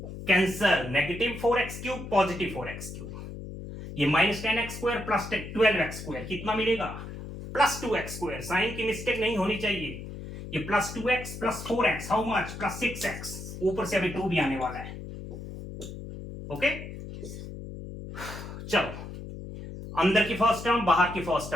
cancel, -4x³ +4x³, ये -10x² + 12x², कितना मिलेगा +2x²। साइन की मिस्टेक नहीं होनी चाहिए, ये +2x + 4x, how much, +6x, ऊपर से अभी 2 भी आने वाला है। ओके, चलो, अंदर की फर्स्ट टर्म बाहर की फर्स्ट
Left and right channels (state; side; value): noise; left; hum, 10 dB below the sound